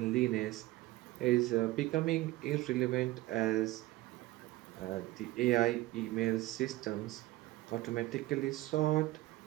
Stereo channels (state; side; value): quieter; left; 17.8 dB